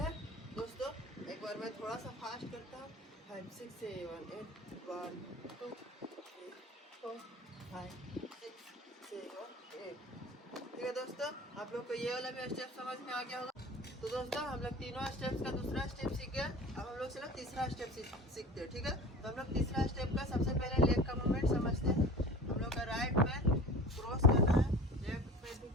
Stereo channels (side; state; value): both; normal; correlation 0.38